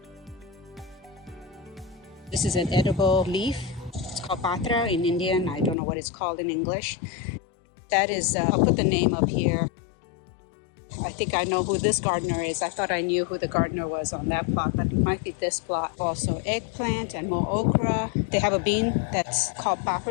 This is an edible leaf. It's called patra in Indian. I don't know what it's called in English. That is, I'll put the name up here. I think I know who this gardener is. I thought I knew who the gardener was on that plot, but it might be this plot. Also eggplant and more okra. They have a bean that's called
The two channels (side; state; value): right; drops out; at 5.8 s